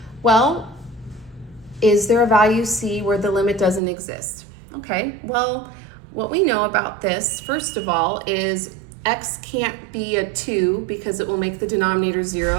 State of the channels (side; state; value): left; drops out; at 3.8 s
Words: Well, is there a value c where the limit doesn't exist? Okay, well, what we know about this, first of all, is x can't be a 2 because it will make the denominator